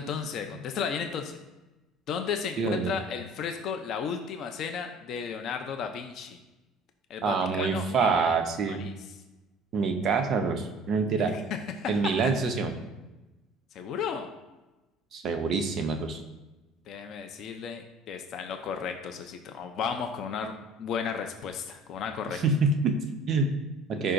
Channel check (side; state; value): both; normal; correlation 0.48